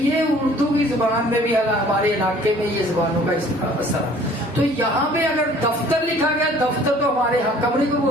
اردو کی زبان میں بھی ہمارے علاقے میں یہ زبانوں کا اثر ہے. تو یہاں پہ اگر دفتر لکھا گیا، دفتر تو ہمارے یہاں کمرے کو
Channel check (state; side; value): normal; both; correlation 0.53